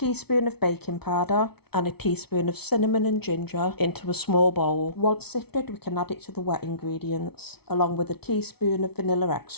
of baking powder and a teaspoon of cinnamon and ginger into a small bowl. Once sifted, we can add it to the wet ingredients, along with a teaspoon of vanilla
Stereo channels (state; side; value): late; right; 0.97 ms